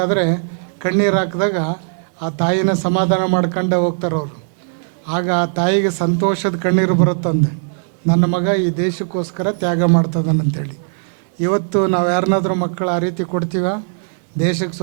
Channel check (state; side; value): silent; left; 62 dB below the other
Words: ಕಣ್ಣೀರು ಹಾಕಿದಾಗ ಆ ತಾಯಿನ ಸಮಾಧಾನ ಮಾಡ್ಕೊಂಡೇ ಹೋಗ್ತಾರೆ ಅವರು. ಆಗ ಆ ತಾಯಿಗೆ ಸಂತೋಷದ ಕಣ್ಣೀರು ಬರುತ್ತಂದೆ, ನನ್ನ ಮಗ ಈ ದೇಶಕ್ಕೋಸ್ಕರ ತ್ಯಾಗ ಮಾಡ್ತದನಂತೇಳಿ. ಇವತ್ತು ನಾವು ಯಾರನ್ನಾದ್ರೂ ಮಕ್ಕಳು ಆ ರೀತಿ ಕೊಡ್ತೀವ? ದೇಶಕ್ಕೆ